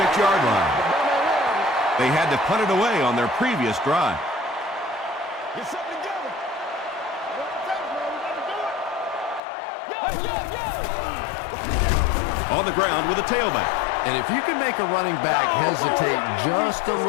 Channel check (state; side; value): drops out; right; at 9.4 s